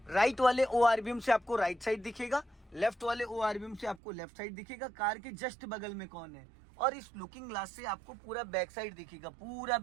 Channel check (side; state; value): left; drops out; at 4.0 s